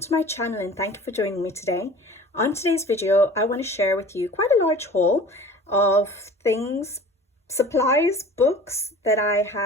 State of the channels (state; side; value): normal; both; correlation 0.43